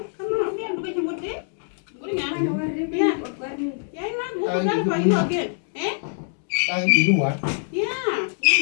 Yeah, look at you, what day? Good again. Yeah, man, what was that for you again? Eh? You know what? Yeah.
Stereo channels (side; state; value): right; silent; 63 dB below the other